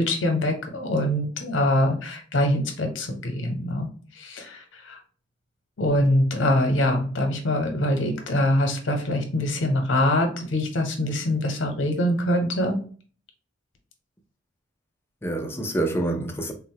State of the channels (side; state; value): both; normal; correlation 0.55